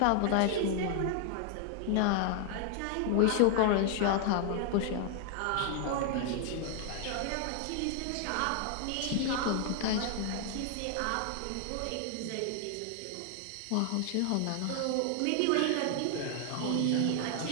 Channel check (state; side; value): different; both; correlation 0.00